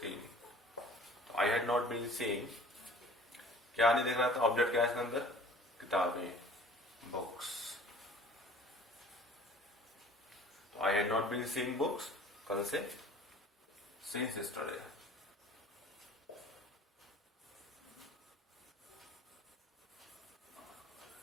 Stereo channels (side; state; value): both; normal; correlation 0.48